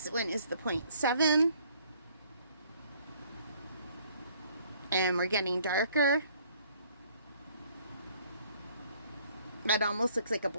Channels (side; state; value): both; inverted; correlation -0.61